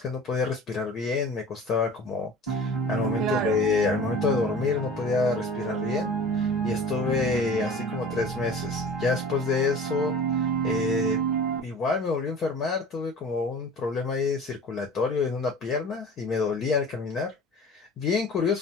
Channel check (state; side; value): normal; both; correlation 0.41